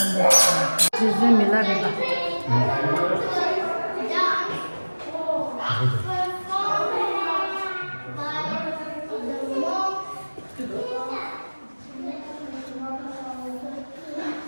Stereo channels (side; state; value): both; inverted; correlation -1.00